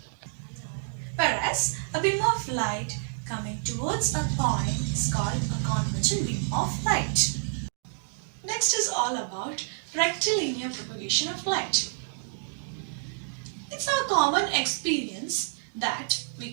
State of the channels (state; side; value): silent; left; digital silence